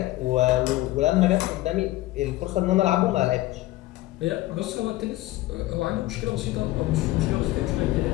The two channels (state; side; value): quieter; right; 17.3 dB